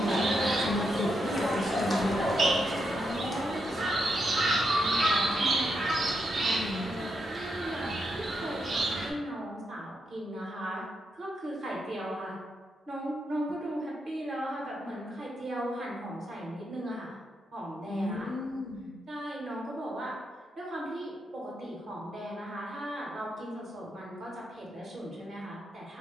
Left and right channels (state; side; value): normal; both; correlation 0.82